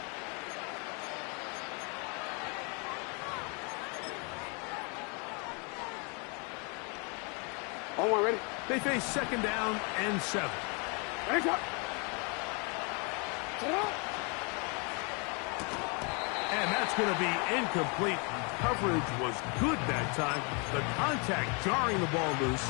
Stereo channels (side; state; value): right; quieter; 34.4 dB